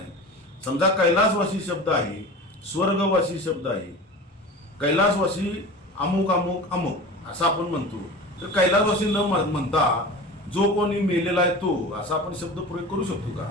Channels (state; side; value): normal; both; correlation 0.34